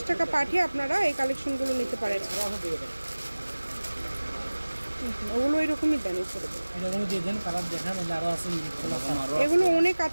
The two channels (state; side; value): inverted; both; correlation -1.00